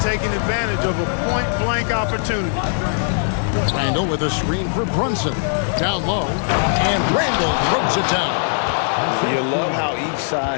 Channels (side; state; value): right; silent; digital silence